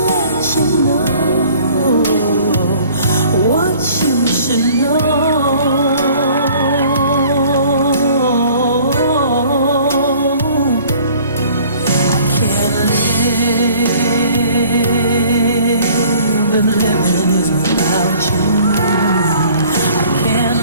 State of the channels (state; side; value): inverted; both; correlation -0.53